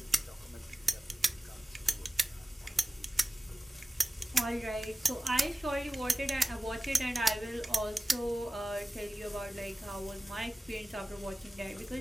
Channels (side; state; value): both; normal; correlation 0.96